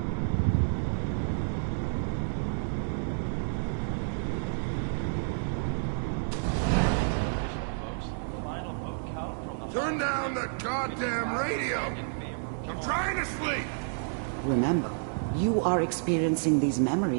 Turn down the goddamn radio! I'm trying to sleep! Remember, you are experiencing these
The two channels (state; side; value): silent; left; digital silence